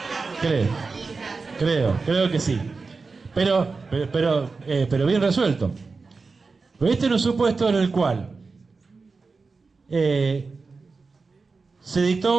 Creo que sí. Pero bien resuelto. Pero este era un supuesto en el cual se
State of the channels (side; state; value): left; quieter; 4.3 dB